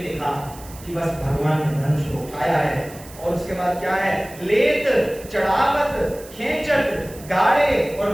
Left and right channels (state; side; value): noise; right; hiss, 19 dB below the sound